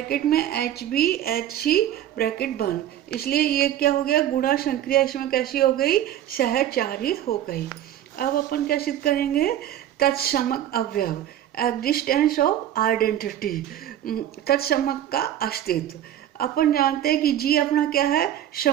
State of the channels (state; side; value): quieter; left; 11.6 dB